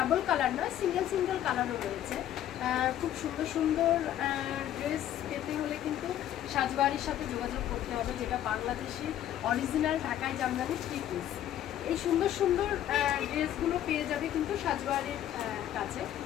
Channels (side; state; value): right; quieter; 11.7 dB